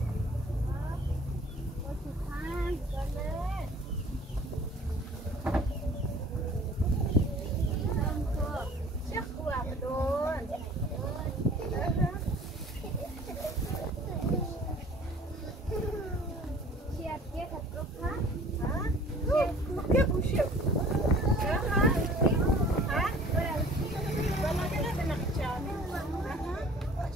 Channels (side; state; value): both; normal; correlation 0.49